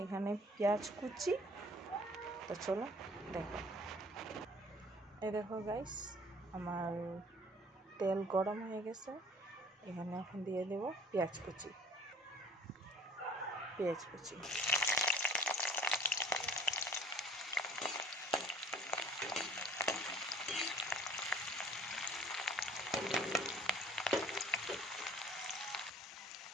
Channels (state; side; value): normal; both; correlation 0.52